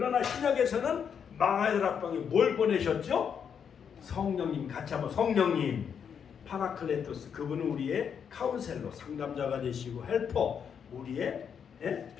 신약에서는 마가다락방에 뭘 보내셨죠? 성령님. 같이 한번 성령님. 파라클레토스, 그분은 우리의 카운셀러, 상담자가 되시고, 헬퍼, 우리의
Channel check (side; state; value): right; quieter; 7.4 dB